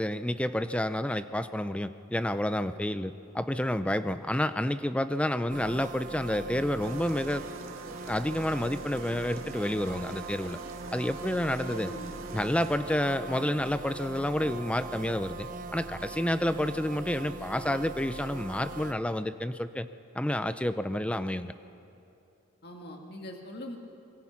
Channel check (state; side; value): normal; both; correlation 0.86